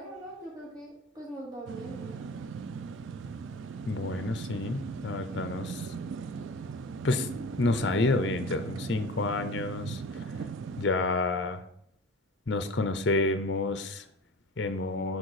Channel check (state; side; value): normal; both; correlation 0.37